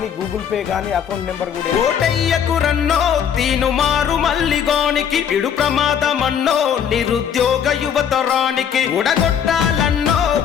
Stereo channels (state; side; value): quieter; right; 8.3 dB